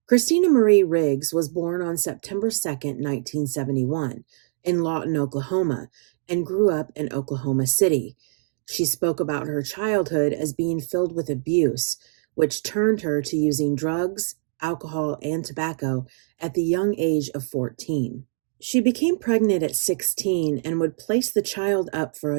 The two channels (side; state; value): left; silent; digital silence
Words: Christina Marie Riggs was born on September 2nd, 1971, in Lawton, Oklahoma, and grew up in Oklahoma City. She spoke about her childhood as being filled with abuse, which turned her to using drugs, alcohol, and tobacco at the young age of 14. She became pregnant at 16 and would place the child up for